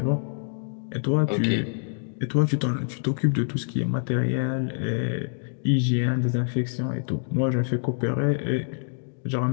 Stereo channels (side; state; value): right; silent; digital silence